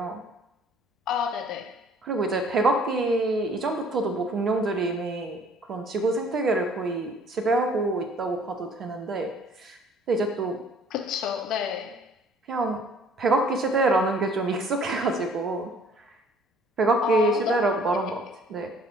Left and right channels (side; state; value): both; normal; correlation 0.55